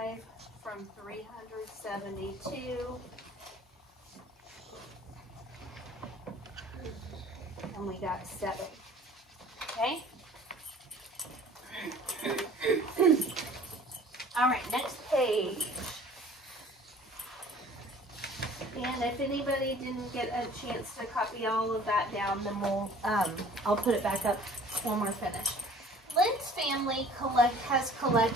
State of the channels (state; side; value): normal; both; correlation 0.49